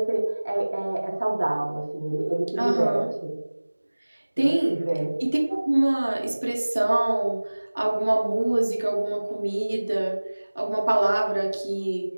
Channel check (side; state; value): both; inverted; correlation -1.00